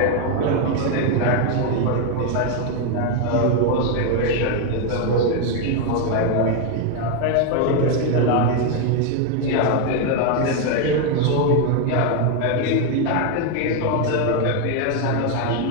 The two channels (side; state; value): both; different; correlation 0.01